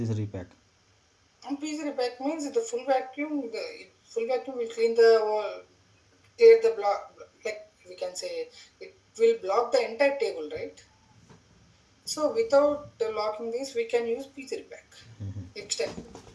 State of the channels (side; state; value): both; identical; correlation 1.00